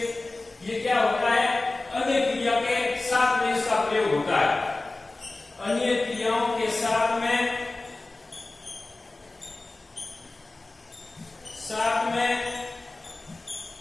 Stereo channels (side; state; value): right; quieter; 3.1 dB